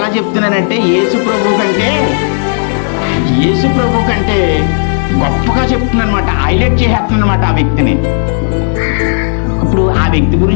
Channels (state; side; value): silent; right; 67 dB below the other